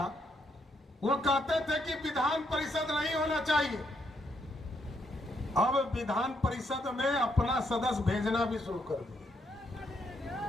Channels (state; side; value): normal; both; correlation 0.76